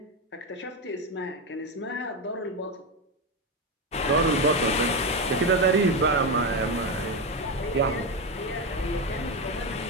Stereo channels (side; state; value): both; normal; correlation 0.12